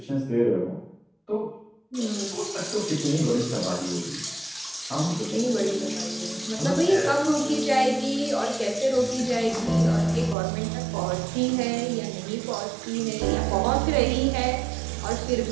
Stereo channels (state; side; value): drops out; left; at 10.4 s